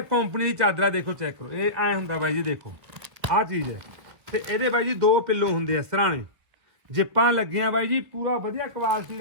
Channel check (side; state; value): left; late; 1.6 ms